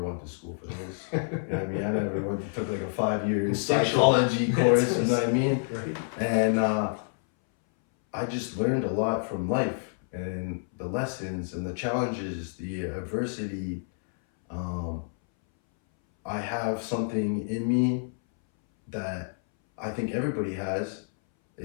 went to school for this. You know what I mean? I never took like a 5-year psychology course, you know what I mean? Right. And I just learned a lot from life, and the lessons and the challenges, the adversity. I have something in me that I think everybody has.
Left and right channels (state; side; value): silent; right; 59 dB below the other